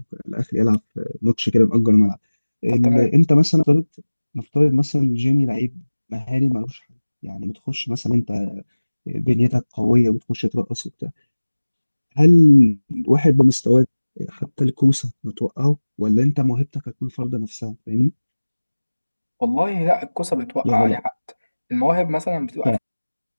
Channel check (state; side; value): inverted; both; correlation -1.00